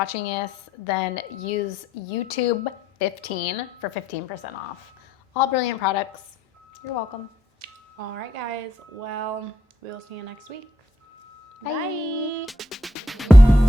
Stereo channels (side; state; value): both; normal; correlation 0.75